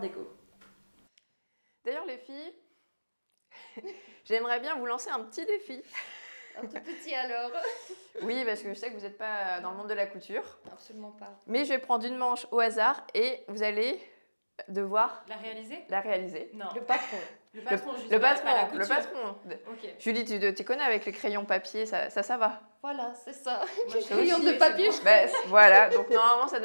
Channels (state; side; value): inverted; both; correlation -1.00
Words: Déco. D'ailleurs les filles, j'aimerais bien vous lancer un petit défi. Un tout petit alors. Oui, parce que je sais que vous n'êtes pas dans le monde de la couture. Absolument pas. Mais je vais prendre une manche au hasard et vous allez devoir La réaliser? la réaliser. Non. Le patron. Le patron, juste Le pas patron, la le couture. patron. Ok. Julie, tu connais avec les crayons papier, ça va. Voilà, c'est ça. Moi, je Crayon aussi, de c'est papier. bon. Bah, voilà, donc normalement ça